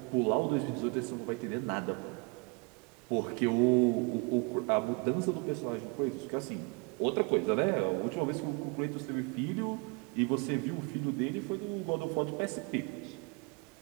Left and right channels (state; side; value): quieter; left; 31.0 dB